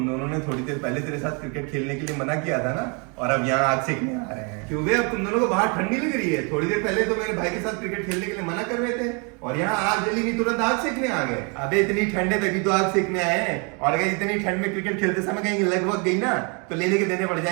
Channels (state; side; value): quieter; left; 34.0 dB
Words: दोनों ने थोड़ी देर पहले तेरे साथ क्रिकेट खेलने के लिए मना किया था ना, और अब यहाँ आग सेकने आ रहे हैं। क्यों बे, अब तुम दोनों को बाहर ठंड नहीं लग रही है? थोड़ी देर पहले तो मेरे भाई के साथ क्रिकेट खेलने के लिए मना कर रहे थे, और यहाँ आग जली नहीं, तुरंत आग सेकने आ गए। अबे इतनी ठंड है तभी तो आग सेकने आए हैं, और अगर इतनी ठंड में क्रिकेट खेलते समय कहीं लगभग गई ना तो लेने के देने पड़